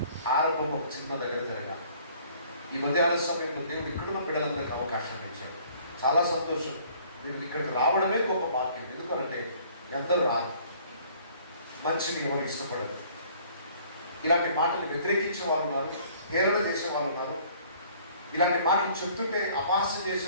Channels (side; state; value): both; inverted; correlation -0.56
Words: ఆరంభం ఒక చిన్న దగ్గర జరగాలి. ఈ మధ్యాహ్న సమయంలో దేవుడు ఇక్కడున్న బిడ్డలందరికీ అవకాశం ఇచ్చాడు. చాలా సంతోషం. మీరు ఇక్కడికి రావడమే గొప్ప భాగ్యం. ఎందుకంటే ఎందరూ రారు, మంచిని ఎవరు ఇష్టపడరు. ఇలాంటి మాటలు వ్యతిరేకించే వాళ్ళు ఉన్నారు, హేళన చేసే వాళ్ళు ఉన్నారు. ఇలాంటి మాటలు చెప్తుంటే అపహాస్యం